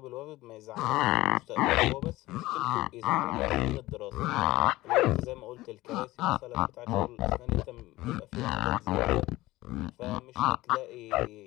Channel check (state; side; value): quieter; right; 18.2 dB